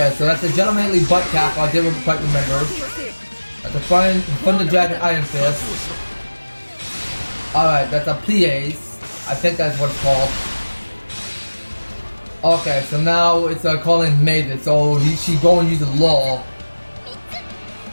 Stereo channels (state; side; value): inverted; both; correlation -1.00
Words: so that's a gentlemanly butt cap, I didn't quite remember. That's a Thunder Dragon Iron Fist. Alright, that's a Plies. I think that's what it's called. Okay, so now it's calling Maven, so she's going to use the law.